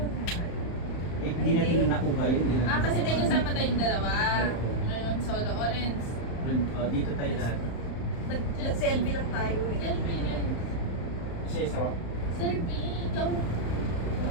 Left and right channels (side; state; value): right; late; 35 ms